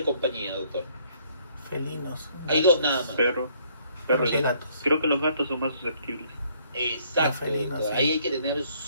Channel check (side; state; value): both; inverted; correlation -0.65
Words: compañía, doctor? felinos. Hay dos nada más. Perro. Perros Perro. y gatos. Creo que los gatos son más susceptibles. Exacto, Los felinos, doctor. sí. Ahí hay que tener